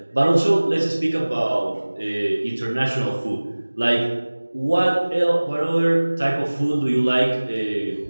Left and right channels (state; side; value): inverted; both; correlation -1.00